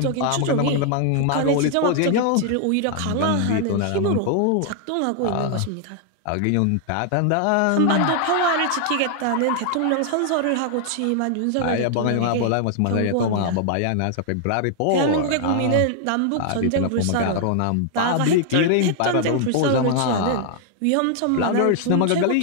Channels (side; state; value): both; different; correlation 0.00